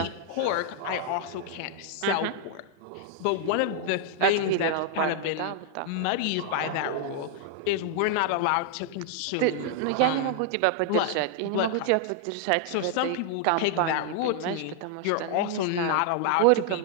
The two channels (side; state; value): both; different; correlation -0.01